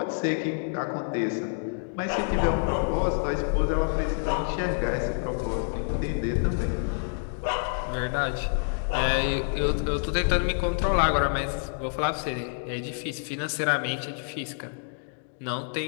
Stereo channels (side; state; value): right; silent; 60 dB below the other